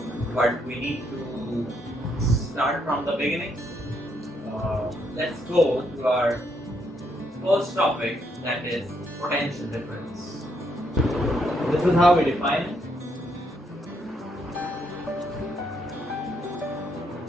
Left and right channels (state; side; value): normal; both; correlation 0.74